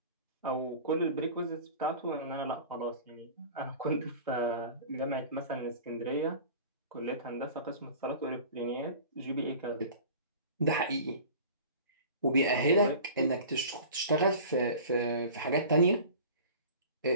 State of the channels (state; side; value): inverted; both; correlation -0.40